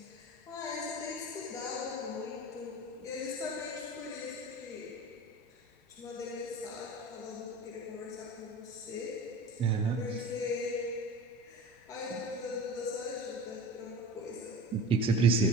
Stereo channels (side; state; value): both; normal; correlation 0.35